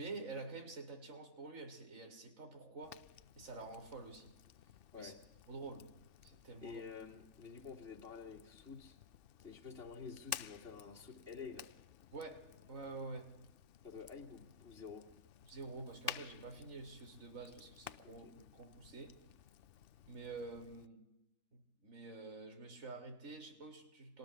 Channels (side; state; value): left; late; 2.6 ms